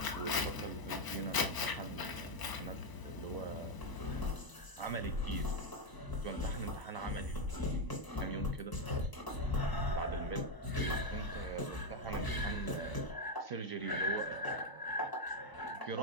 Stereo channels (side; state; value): right; late; 1.0 ms